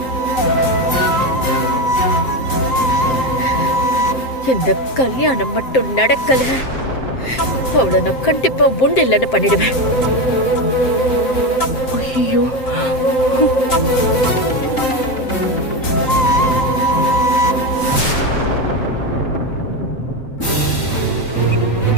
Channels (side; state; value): right; late; 7.6 ms